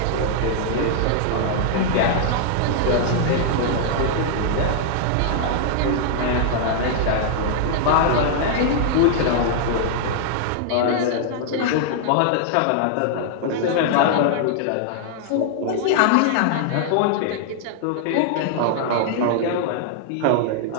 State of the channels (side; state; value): both; different; correlation -0.01